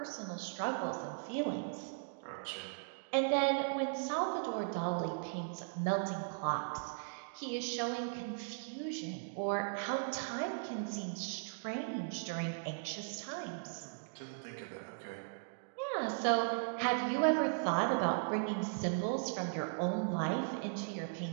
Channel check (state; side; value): silent; left; digital silence